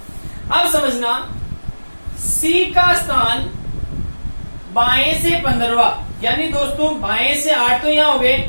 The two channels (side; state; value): both; inverted; correlation -1.00